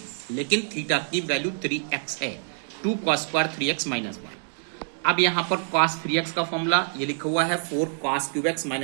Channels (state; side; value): silent; left; digital silence